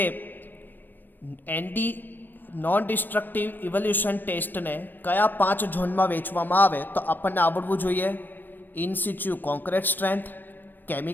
એનડી નોન ડિસ્ટ્રક્ટિવ ઇવોલ્યુશન ટેસ્ટને કયા 5 ઝોનમાં વહેંચવામાં આવે તો આપણને આવડવું જોઈએ. In situ concrete strength,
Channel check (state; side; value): late; right; 0.089 ms